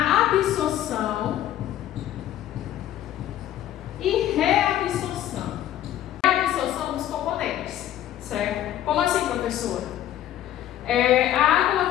absorção e reabsorção. Reabsorção dos componentes, certo? Como assim, professora? A água ela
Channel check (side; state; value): right; quieter; 12.2 dB